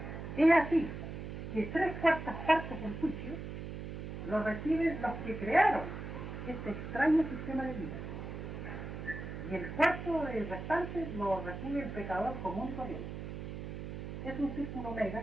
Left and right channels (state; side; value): noise; right; hum, 7 dB below the sound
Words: Es así que 3/4 partes del juicio lo reciben los que crearon este extraño sistema de vida. Y el cuarto del restante lo recibe el pecador común y corriente. Es un círculo omega